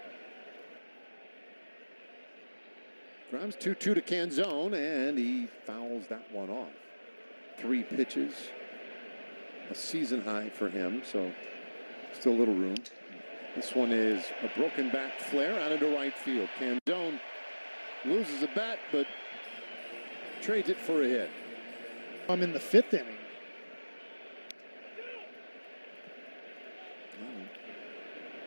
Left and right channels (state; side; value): inverted; both; correlation -1.00